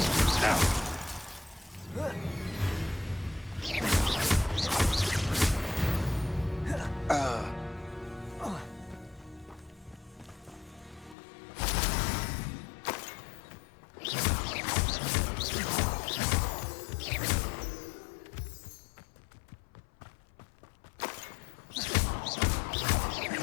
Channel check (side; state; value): right; drops out; at 11.2 s